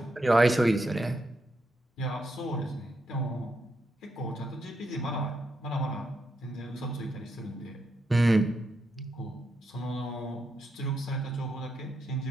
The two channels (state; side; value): normal; both; correlation 0.82